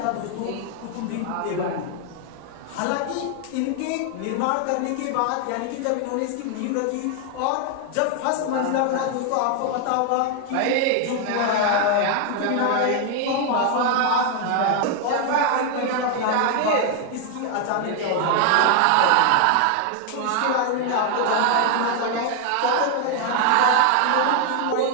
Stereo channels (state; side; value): different; both; correlation 0.00